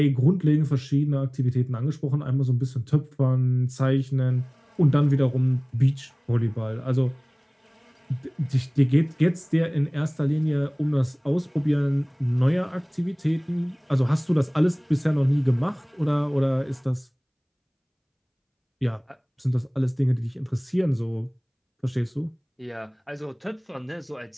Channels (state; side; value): identical; both; correlation 1.00